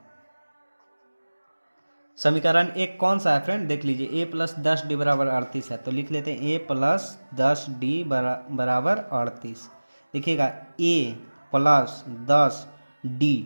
समीकरण 1 कौन सा है फ्रेंड, देख लीजिए, a + 10D बराबर 38 है, तो लिख लेते हैं a + 10D बराबर 38। देखिएगा a + 10D,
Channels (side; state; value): both; inverted; correlation -1.00